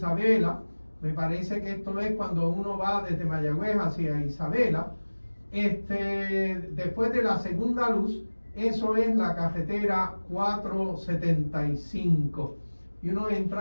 Me parece que esto es cuando uno va desde Mayagüez hacia Isabela. Después de la segunda luz, eso es la carretera 475. Y uno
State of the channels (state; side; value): inverted; both; correlation -1.00